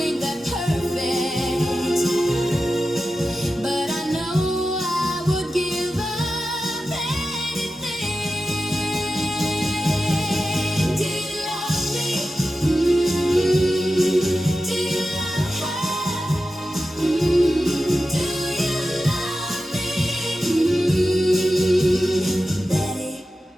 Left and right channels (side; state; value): both; normal; correlation 0.92